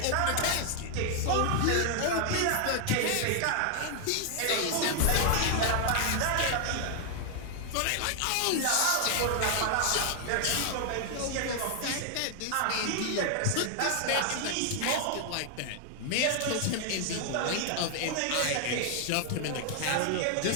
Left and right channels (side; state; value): both; different; correlation 0.00